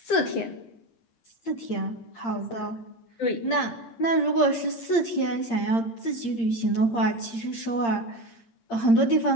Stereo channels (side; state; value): right; late; 8.7 ms